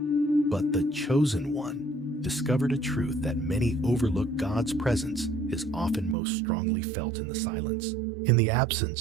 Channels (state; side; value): drops out; left; at 6.2 s